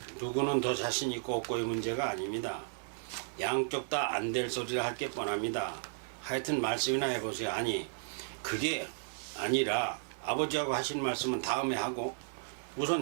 누구는 더 자신 있고 없고의 문제가 아닙니다. 양쪽 다 안 될 소리를 할 게 뻔합니다. 하여튼 말씀이나 해보세요. 아니 그게 아니라 아버지하고 하신 말씀은 다음에 하고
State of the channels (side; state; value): left; silent; 55 dB below the other